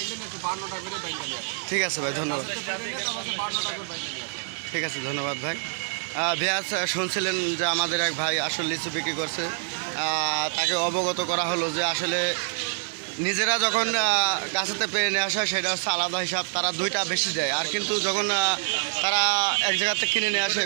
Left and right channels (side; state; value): left; silent; 61 dB below the other